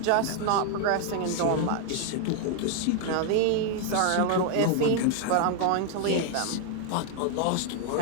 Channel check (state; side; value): different; both; correlation 0.00